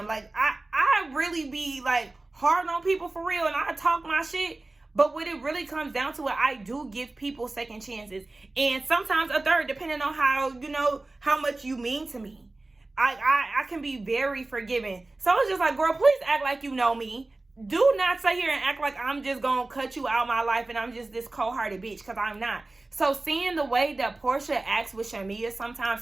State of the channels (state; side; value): quieter; left; 3.0 dB